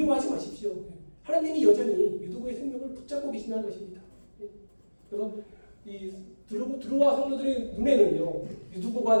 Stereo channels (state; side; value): inverted; both; correlation -1.00